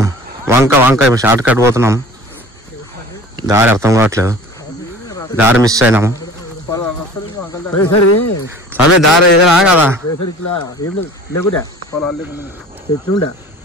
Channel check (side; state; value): both; normal; correlation 0.43